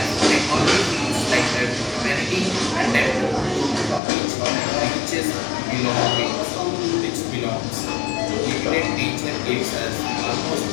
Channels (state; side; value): drops out; right; at 4.0 s